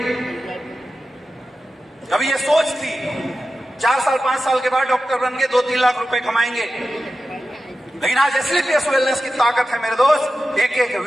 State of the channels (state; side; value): normal; both; correlation 0.93